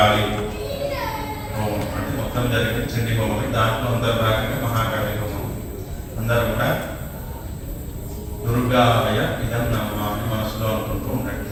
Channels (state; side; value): identical; both; correlation 1.00